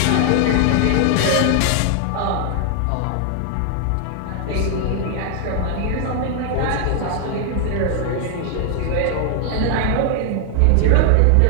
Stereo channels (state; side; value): different; both; correlation 0.00